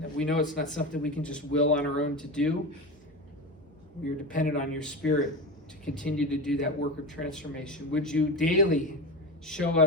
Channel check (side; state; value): both; normal; correlation 0.22